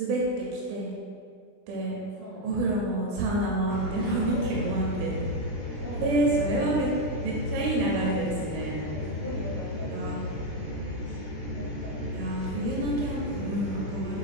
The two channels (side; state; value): left; late; 20 ms